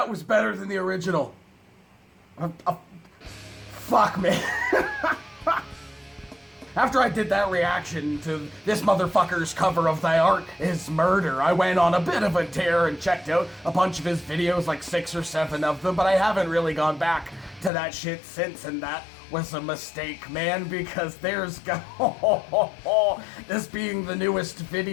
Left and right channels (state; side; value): drops out; right; at 17.7 s